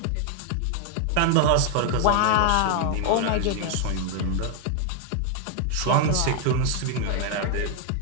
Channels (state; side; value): different; both; correlation 0.00